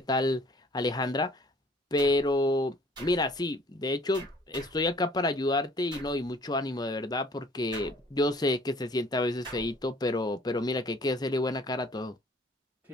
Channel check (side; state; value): both; normal; correlation 0.55